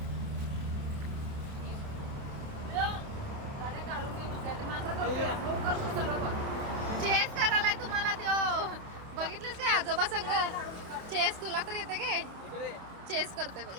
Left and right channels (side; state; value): left; late; 28 ms